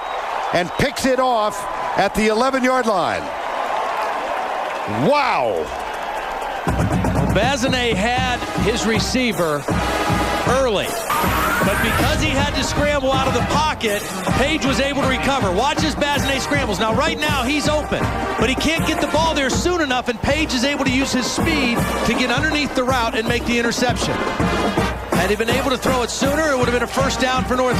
and picks it off at the 11-yard line. Wow. Bazinet had his receiver early. But because he had to scramble out of the pocket, Page was able to recover. Watch as Bazinet scrambles. Now, right now, he's open, but he can't get the ball there soon enough, and Page is able to use his speed to get underneath the route and make the interception. Had he been able to throw it sooner, it would have been a first down for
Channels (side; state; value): both; identical; correlation 1.00